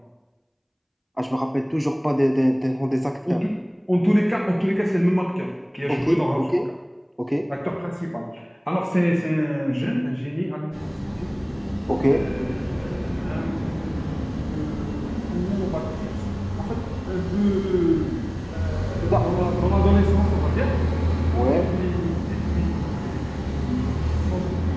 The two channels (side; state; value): both; identical; correlation 1.00